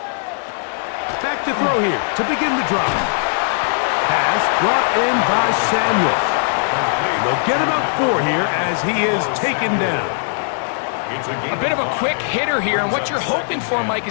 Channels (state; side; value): silent; right; digital silence